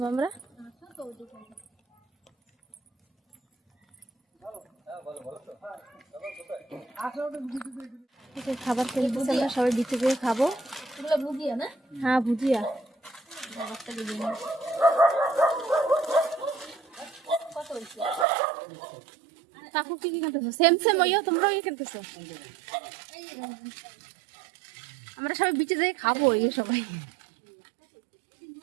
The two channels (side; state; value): left; drops out; at 18.2 s